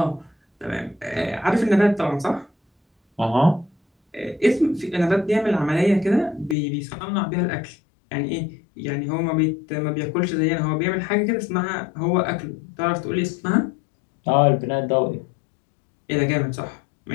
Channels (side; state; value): right; drops out; at 6.6 s